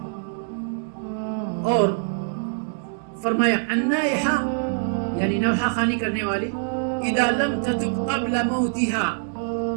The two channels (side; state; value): left; silent; digital silence